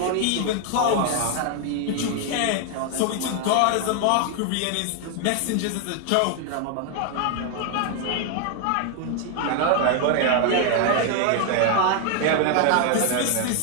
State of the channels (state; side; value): different; both; correlation 0.00